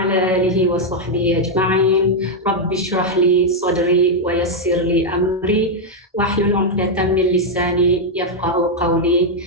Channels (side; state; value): both; normal; correlation -0.01